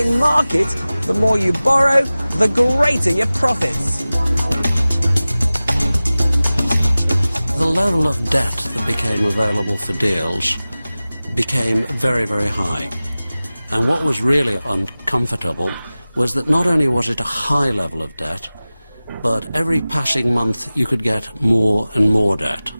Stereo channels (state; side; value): inverted; both; correlation -0.97